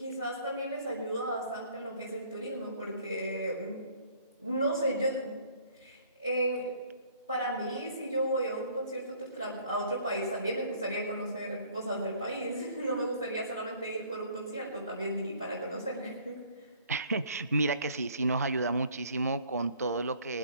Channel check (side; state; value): both; inverted; correlation -0.57